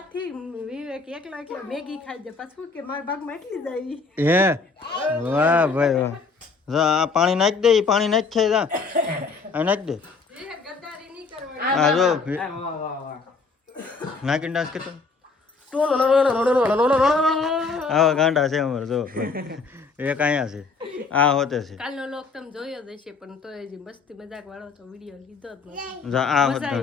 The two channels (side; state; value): right; quieter; 4.4 dB